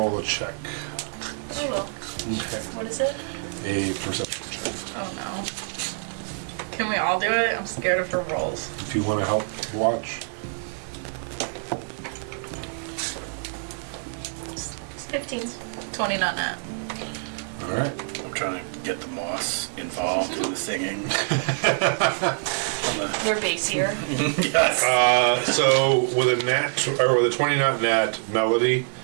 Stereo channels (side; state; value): left; silent; 61 dB below the other